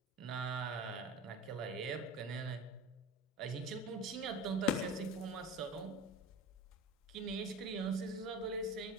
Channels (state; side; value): normal; both; correlation 0.32